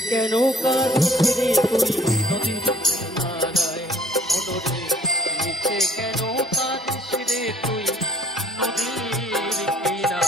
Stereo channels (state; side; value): normal; both; correlation 0.57